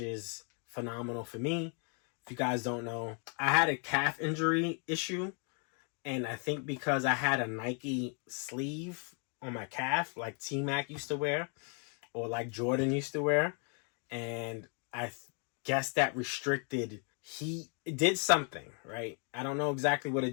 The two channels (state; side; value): quieter; right; 39.8 dB